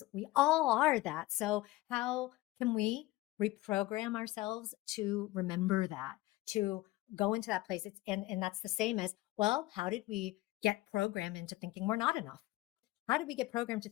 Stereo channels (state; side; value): quieter; right; 18.2 dB